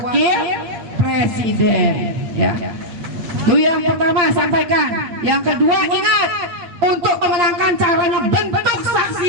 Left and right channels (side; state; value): left; late; 8.7 ms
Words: presiden, ya. Itu yang pertama sampaikan. Yang kedua ingat, untuk memenangkan caranya bentuk